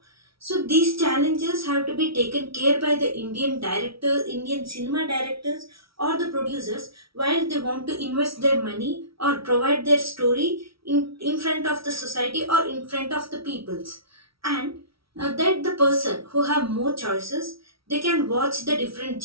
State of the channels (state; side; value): late; left; 0.75 ms